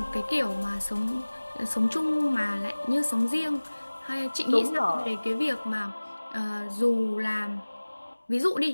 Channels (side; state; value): both; inverted; correlation -1.00